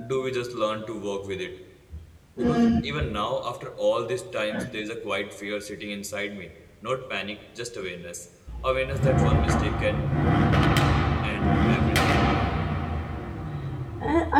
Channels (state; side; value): identical; both; correlation 1.00